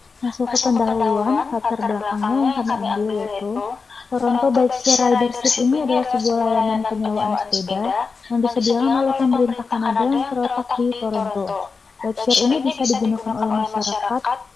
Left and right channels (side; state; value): right; quieter; 4.7 dB